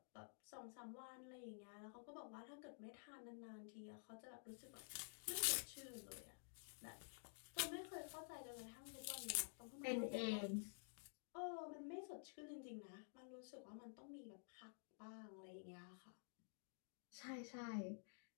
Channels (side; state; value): right; silent; digital silence